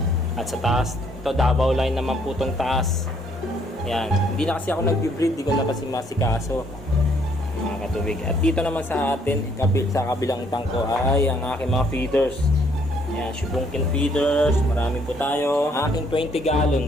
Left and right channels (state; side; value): normal; both; correlation 0.66